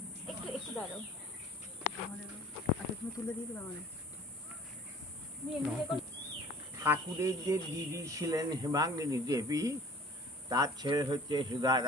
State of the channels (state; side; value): normal; both; correlation 0.48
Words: একটু একটু দাঁড়াও। আচ্ছা তুমি তুলে দিয়ে দিলে আমাদের। ঠাকুরের যে দিদি ছিলেন হেমাঙ্গিনী দেবী, তার ছেলে হচ্ছে